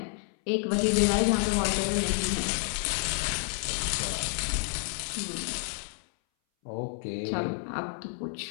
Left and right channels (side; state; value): right; silent; 58 dB below the other